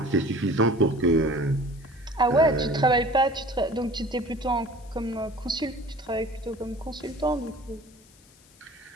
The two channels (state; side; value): noise; left; hiss, 27 dB below the sound